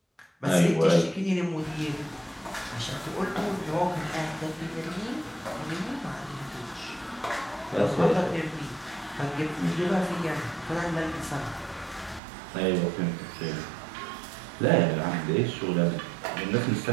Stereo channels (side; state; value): left; drops out; at 12.2 s